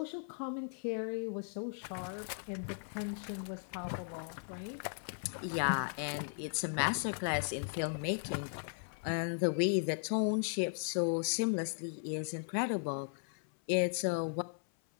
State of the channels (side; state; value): right; silent; 53 dB below the other